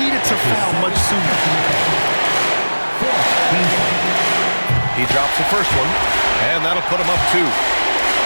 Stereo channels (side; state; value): both; inverted; correlation -1.00